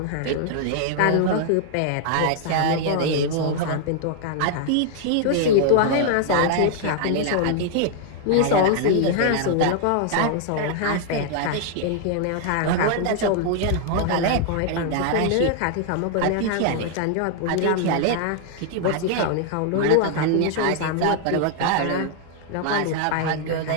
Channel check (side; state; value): both; different; correlation 0.00